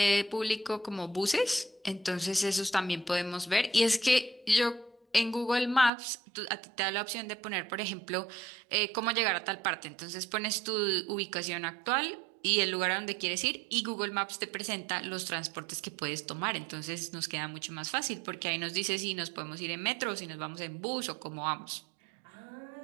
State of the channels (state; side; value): drops out; left; at 5.9 s